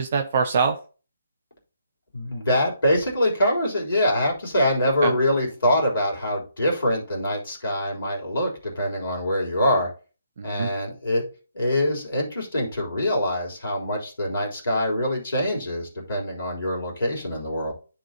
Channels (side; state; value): both; inverted; correlation -0.72